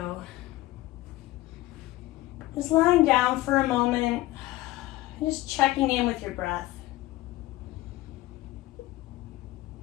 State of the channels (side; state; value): right; quieter; 17.4 dB